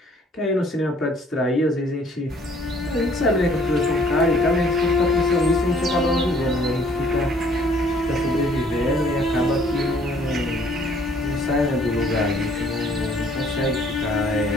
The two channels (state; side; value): normal; both; correlation 0.60